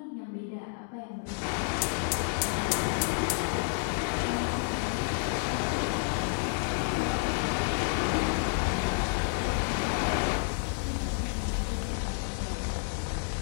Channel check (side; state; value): right; silent; 58 dB below the other